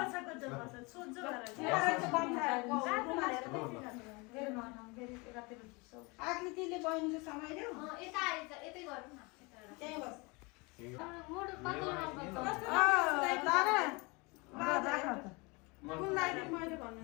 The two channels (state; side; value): quieter; right; 27.4 dB